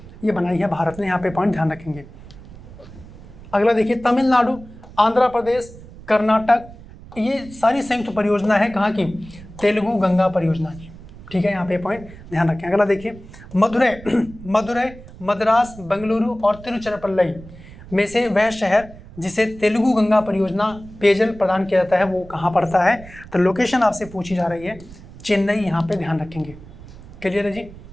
ये बनाई है भारत ने, यहाँ पे पॉइंट ध्यान रखेंगे। अगला देखिए, तमिलनाडु, आंध्र प्रदेश, कर्नाटक, ये सारी संयुक्त परियोजना है कहाँ की? तेलुगु गंगा परियोजना की। ठीक है, यहाँ पे पॉइंट ध्यान रखें। अगला देखिए, मदुरै, मद्रास, बेंगलुरु और तिरुचिरापल्ली में से वह शहर जिसे तेलुगु गंगा परियोजना पेयजल प्रदान किया जाता है वो कहाँ पड़ता है? तो लोकेशन आपसे पूछी जा रही है, चेन्नई, यहाँ पे ध्यान रखेंगे। क्लियर है जी।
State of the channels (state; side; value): noise; right; rumble, 18 dB below the sound